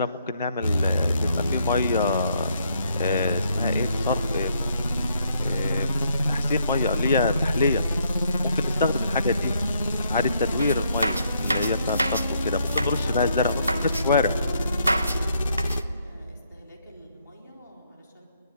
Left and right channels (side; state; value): both; inverted; correlation -0.73